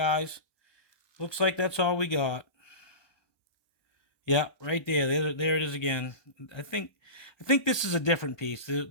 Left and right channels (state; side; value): late; right; 1.2 ms